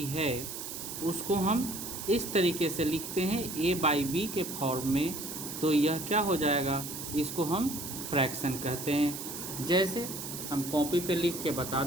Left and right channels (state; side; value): noise; right; hiss, 7 dB below the sound